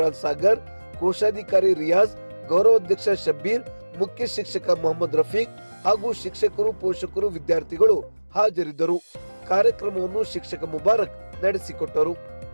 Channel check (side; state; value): both; inverted; correlation -1.00